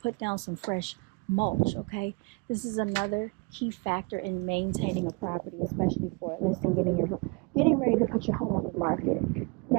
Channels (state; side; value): quieter; left; 30.8 dB